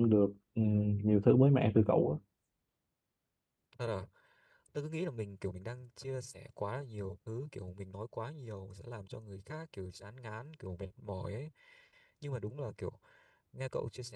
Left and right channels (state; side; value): identical; both; correlation 1.00